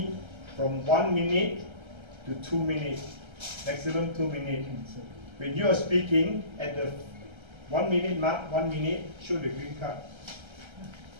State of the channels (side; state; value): left; late; 1.3 ms